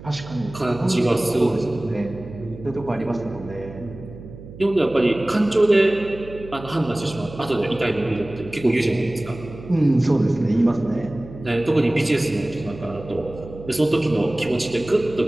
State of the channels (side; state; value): right; noise; hum, 15 dB below the sound